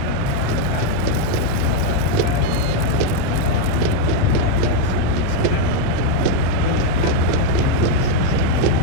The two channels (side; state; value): both; different; correlation 0.01